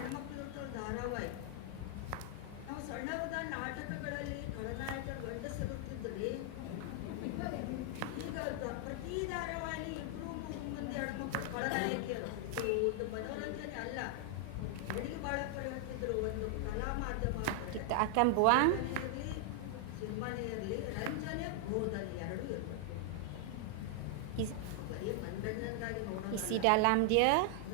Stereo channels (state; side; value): different; both; correlation 0.00